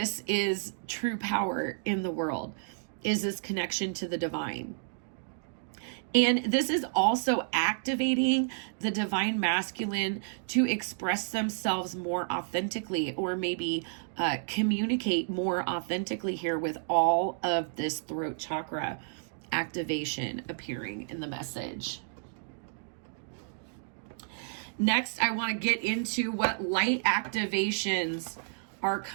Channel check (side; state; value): left; silent; digital silence